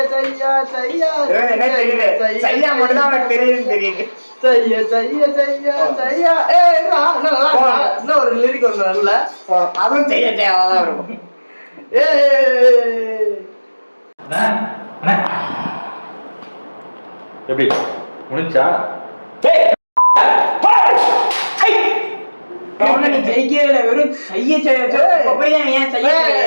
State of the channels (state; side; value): inverted; both; correlation -1.00